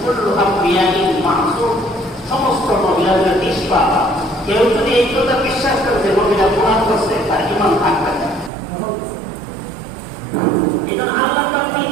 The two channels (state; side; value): drops out; left; at 8.5 s